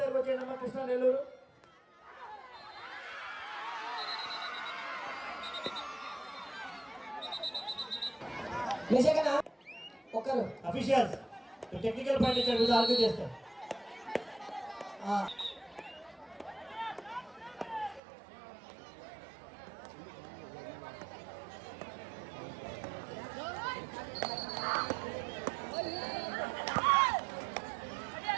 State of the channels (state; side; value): drops out; left; at 18.0 s